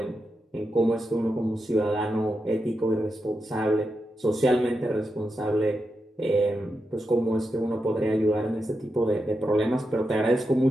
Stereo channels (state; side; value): normal; both; correlation 0.87